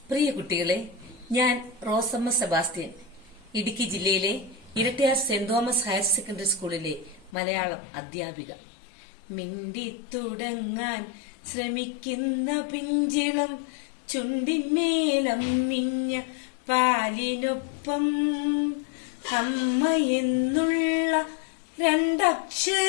പ്രിയ കുട്ടികളെ, ഞാൻ റോസമ്മ സെബാസ്റ്റ്യൻ, ഇടുക്കി ജില്ലയിലെ Erattayar saint Thomas higher secondary സ്കൂളിലെ മലയാളം അധ്യാപിക. മിണ്ടിത്തുടങ്ങാൻ ശ്രമിക്കുന്ന പിഞ്ചിളം ചുണ്ടിന്മേലമ്മിഞ്ഞ പാലിനൊപ്പം അമ്മ എന്നുള്ള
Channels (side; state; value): right; drops out; at 7.3 s